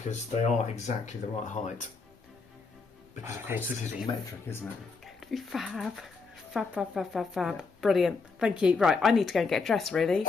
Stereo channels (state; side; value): quieter; right; 4.5 dB